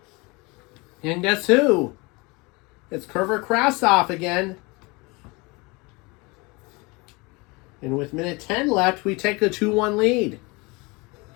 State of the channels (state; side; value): quieter; right; 26.2 dB